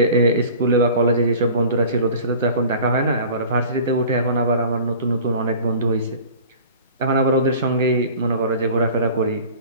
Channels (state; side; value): inverted; both; correlation -0.43